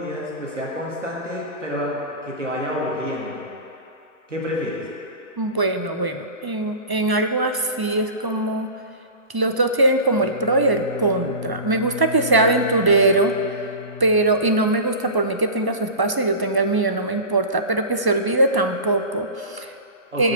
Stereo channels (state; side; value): late; left; 1.0 ms